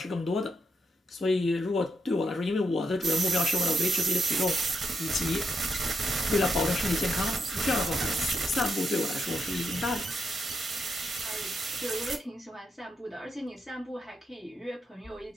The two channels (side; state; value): both; normal; correlation 0.82